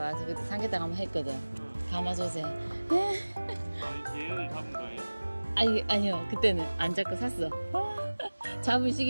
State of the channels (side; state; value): both; inverted; correlation -1.00